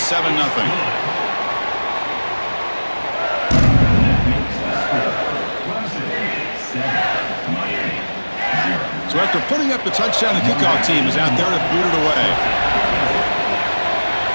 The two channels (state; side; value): inverted; both; correlation -1.00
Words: 7-0. So after putting up the touchdown, the kickoff team is out there to boot it away.